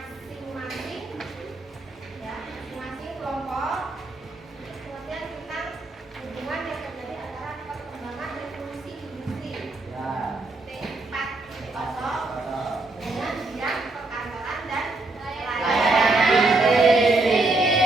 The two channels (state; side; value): quieter; left; 3.1 dB